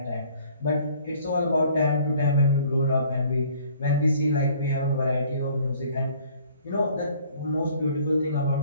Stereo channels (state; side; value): inverted; both; correlation -0.56